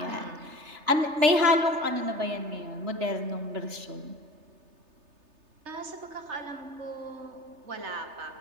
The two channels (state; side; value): late; left; 3.3 ms